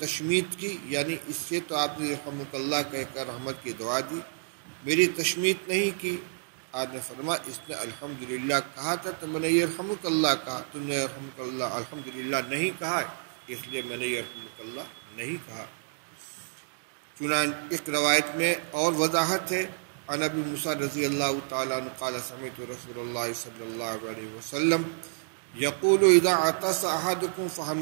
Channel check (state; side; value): silent; left; digital silence